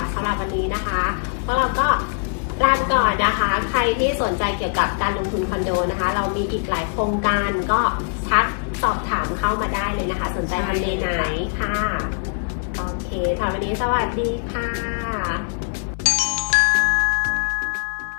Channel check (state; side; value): silent; right; digital silence